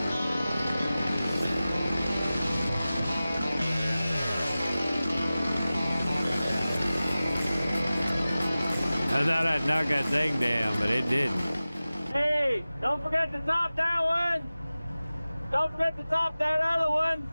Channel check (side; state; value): both; inverted; correlation -0.96